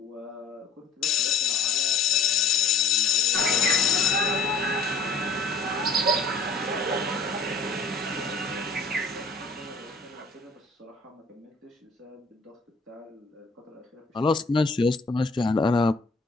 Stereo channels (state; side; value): quieter; right; 3.9 dB